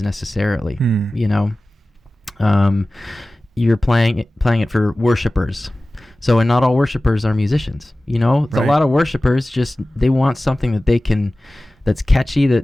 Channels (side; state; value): both; normal; correlation 0.97